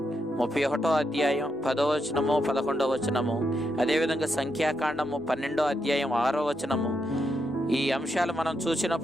31వ అధ్యాయం 10వ వచనము, 11వ వచనము, అదేవిధంగా సంఖ్యాకాండము 12వ అధ్యాయం 6వ వచనము. ఈ అంశాలు మనం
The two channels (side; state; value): both; normal; correlation 0.82